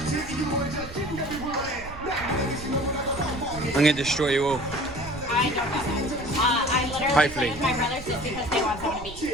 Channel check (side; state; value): right; noise; rumble, 13 dB below the sound